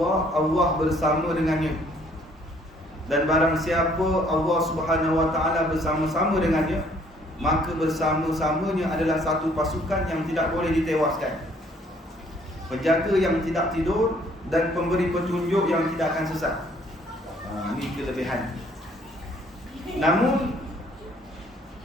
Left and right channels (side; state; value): both; normal; correlation 0.62